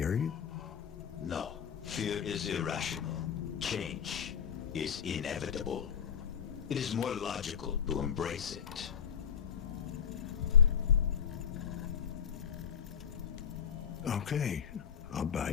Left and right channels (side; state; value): right; quieter; 7.9 dB